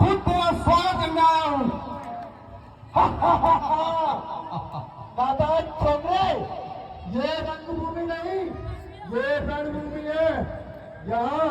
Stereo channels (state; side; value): identical; both; correlation 1.00